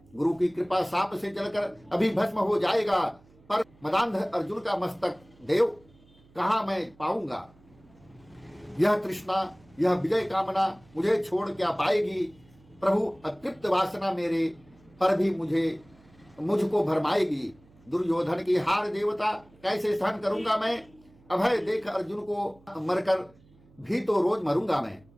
गुरु की कृपा साप से जलकर अभी भस्म हो जाएगा, पर मदांध अर्जुन का मस्तक देव कहां मैं पाऊंगा। यह तृष्णा, यह विजय कामना मुझे छोड़ क्या पाएगी। प्रभु अतृप्त वासना मेरे पर भी मुझको भरमाएगी। दुर्योधन की हार देवता कैसे सहन करूंगा मैं। अभय देख अर्जुन को मरकर भी तो रोज मरूंगा मैं।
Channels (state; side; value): noise; right; hum, 28 dB below the sound